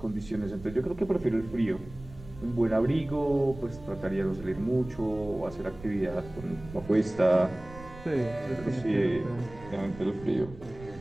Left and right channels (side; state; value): right; noise; rumble, 17 dB below the sound